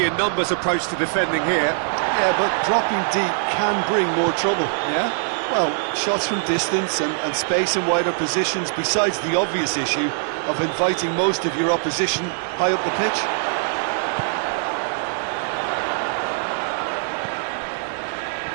in numbers approach to defending here. Yeah, but dropping deep can bring more trouble, yeah? Well, shots from distance and space in wider positions, besides the obvious issue of inviting most of your opposition high up the pitch.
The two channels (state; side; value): silent; left; digital silence